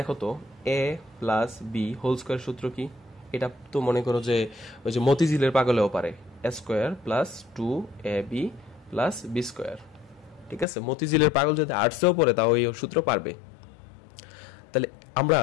তো এ প্লাস বি হোল স্কয়ার সূত্র কি, এটা তো মনে করো যে ওই যে মতিঝিলের পাগলেও পারে, A square plus 2ab plus B square, ঠিক আছে। মতিঝিলের পাগল যদি আর্টসেও পড়ে তাও এই সূত্র পারবে। তাহলে আমরা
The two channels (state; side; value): drops out; right; at 10.7 s